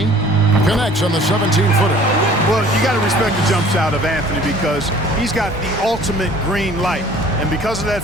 Connects on the 17-footer. Well, you got to respect the jump shot of Anthony because he's got the ultimate green light. And because of that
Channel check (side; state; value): right; noise; rumble, 16 dB below the sound